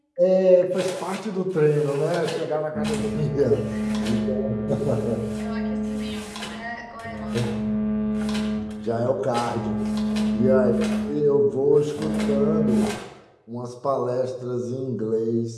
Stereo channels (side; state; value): both; identical; correlation 1.00